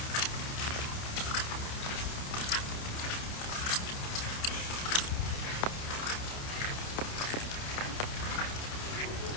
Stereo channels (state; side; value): late; right; 29 ms